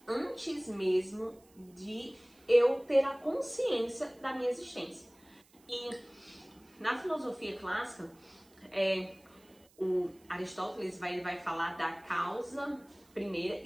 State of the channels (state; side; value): noise; right; hiss, 29 dB below the sound